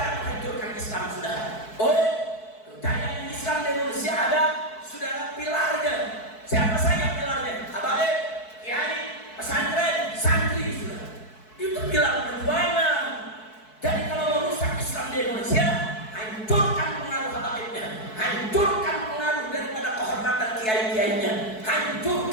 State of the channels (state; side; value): late; right; 4.6 ms